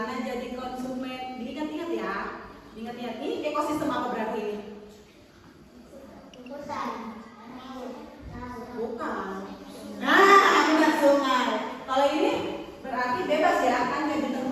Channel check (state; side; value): identical; both; correlation 1.00